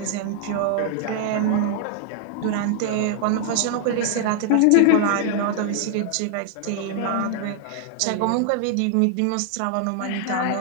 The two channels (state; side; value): different; both; correlation 0.00